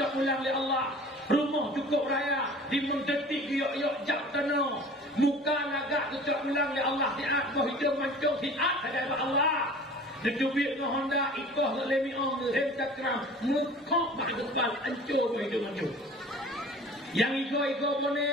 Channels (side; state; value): both; normal; correlation 0.44